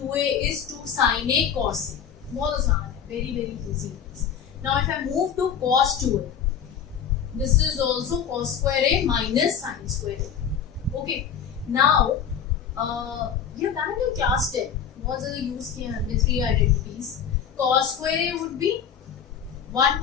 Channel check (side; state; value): right; quieter; 8.0 dB